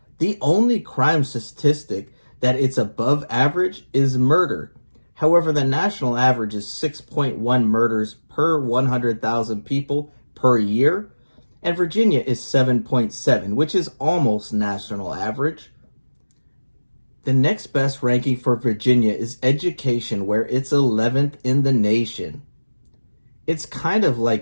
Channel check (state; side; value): inverted; both; correlation -1.00